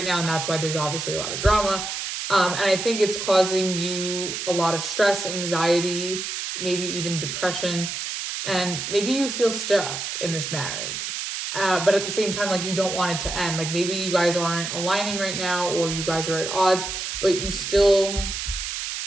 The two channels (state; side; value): noise; right; hiss, 4 dB below the sound